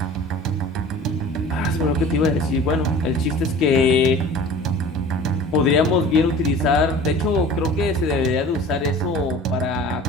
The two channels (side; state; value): both; normal; correlation 0.42